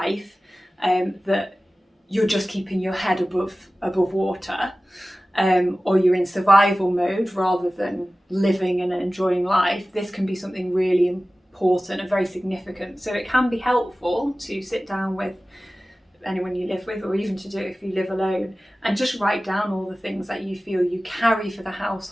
that you're just keeping your head above water, or you're in survival mode rather than living and enjoying life. This can be something really important and very significant. So it can be helpful to sit down with anyone you live with, or even to do it if you live alone, and just write down all the things that you feel you carry for the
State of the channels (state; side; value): normal; both; correlation 0.96